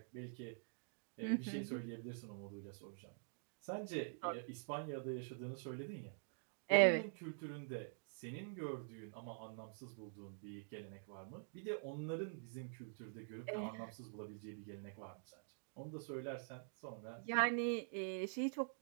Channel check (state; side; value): silent; left; digital silence